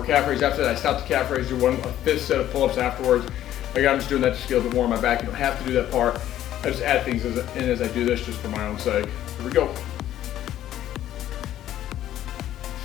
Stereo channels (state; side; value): quieter; right; 12.3 dB